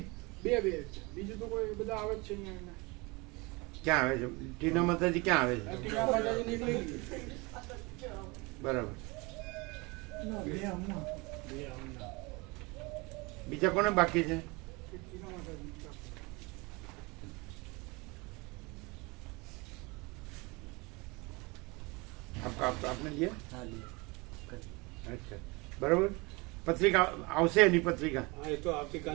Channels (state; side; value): quieter; left; 26.2 dB